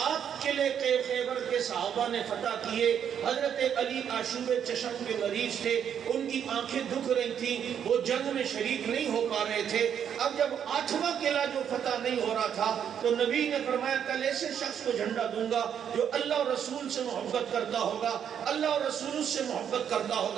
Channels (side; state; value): left; quieter; 8.6 dB